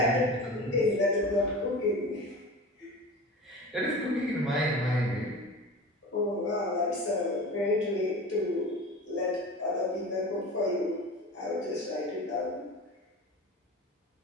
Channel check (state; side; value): normal; both; correlation 0.33